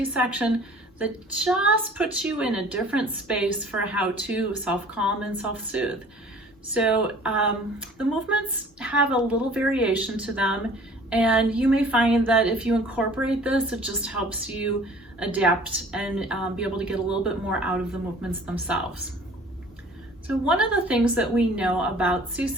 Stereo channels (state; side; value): normal; both; correlation 0.50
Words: that just puts you in a different space for how to self-calm and self-soothe. So the movements have a little variation to them, and you may find that if you incorporate this, it just helps you adapt and be able to get a little bit more out of the movements themselves. So one of the things that we know about